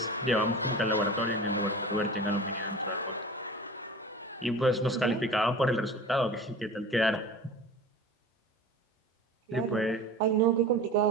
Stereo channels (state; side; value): normal; both; correlation 0.36